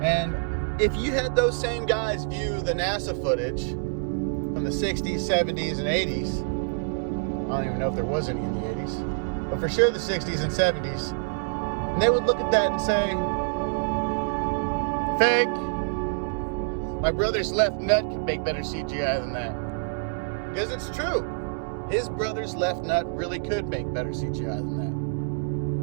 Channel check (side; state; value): left; silent; digital silence